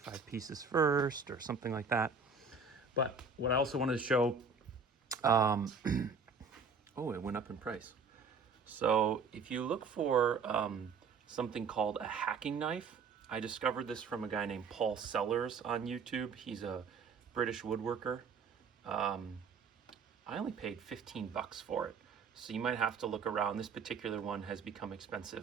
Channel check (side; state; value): left; quieter; 4.9 dB